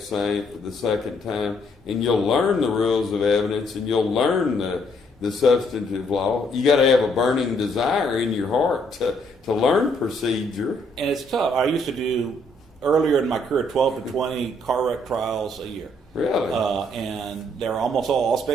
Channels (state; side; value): normal; both; correlation 0.69